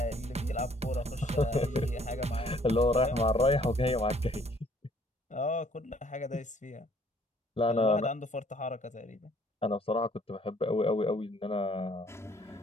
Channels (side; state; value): both; normal; correlation 0.60